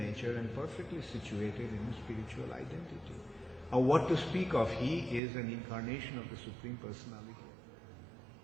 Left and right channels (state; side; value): drops out; left; at 5.2 s